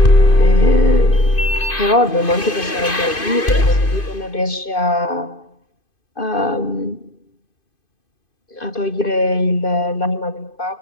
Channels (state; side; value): late; right; 2.5 ms